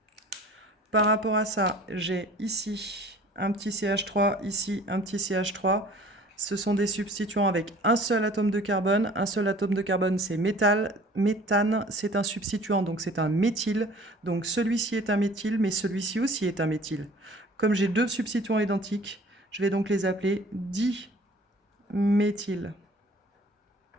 Par rapport à ça, j'ai ici un petit CH3, ici un petit CH3. Ce sont des substituants avec un seul atome de carbone. Un seul atome de carbone, c'est métal. Méthane, c'est un substituant, donc c'est un méthyle. Donc celui-ci est un méthyle, mais celui-ci aussi est un méthyle. Comme j'ai deux substituants identiques, je vais donc les appeler diméthyl.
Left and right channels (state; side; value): normal; both; correlation 0.48